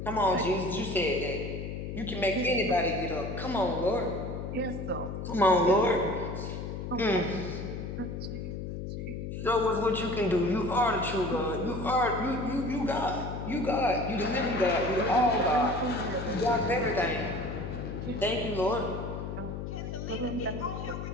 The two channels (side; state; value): left; noise; hum, 6 dB below the sound